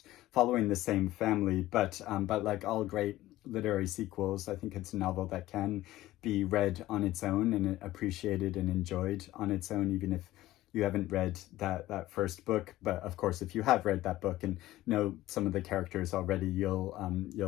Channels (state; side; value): quieter; right; 16.0 dB